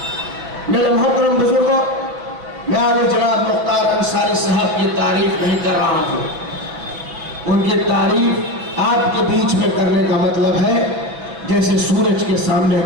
मेरे मोहतरम बुजुर्गों, मैं आगे जनाब मुख्तार अंसारी साहब की तारीफ नहीं कर रहा हूँ। उनकी तारीफ आपके बीच में करने का मतलब है जैसे सूरज के सामने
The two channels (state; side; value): late; left; 6.4 ms